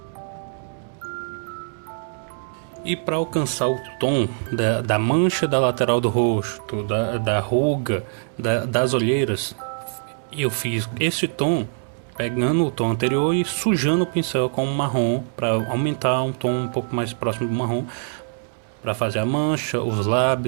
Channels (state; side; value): silent; left; 63 dB below the other